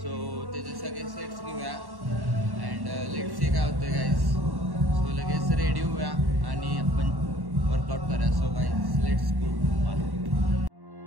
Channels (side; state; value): left; late; 1.1 ms